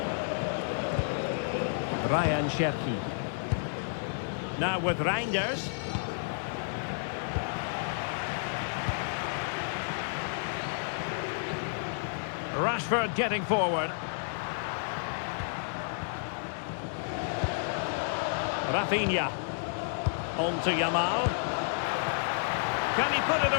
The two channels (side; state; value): right; silent; digital silence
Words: Ryan Cherki. Now with Reinders. Rashford getting forward. Rafinha. On to Yamal. Can he put it